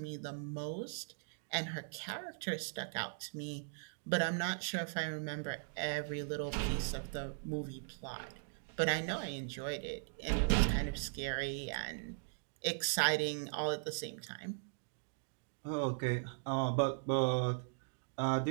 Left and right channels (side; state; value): left; silent; digital silence